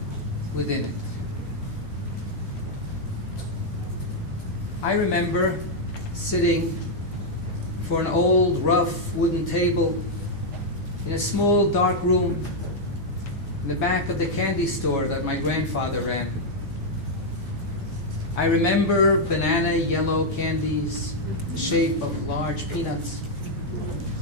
within it. I remember sitting for an old, rough wooden table in a small, dark room in the back of the candy store that my grandfather ran. I remember banana yellow candies, the shape of large peanuts,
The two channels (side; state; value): both; normal; correlation -0.02